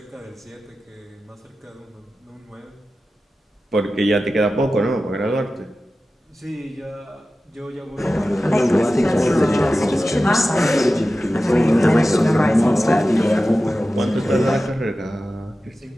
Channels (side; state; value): both; normal; correlation 0.94